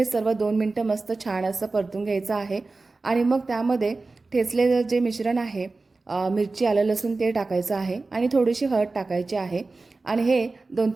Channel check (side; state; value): left; quieter; 3.6 dB